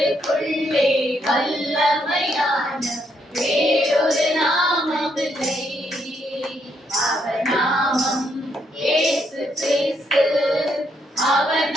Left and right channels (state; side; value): normal; both; correlation 0.75